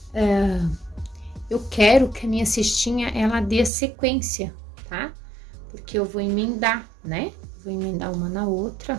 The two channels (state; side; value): drops out; left; at 3.7 s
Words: Eu quero que a minha cestinha, ela dê sequência, tá? Porque eu vou emendar, né? Vou emendar uma na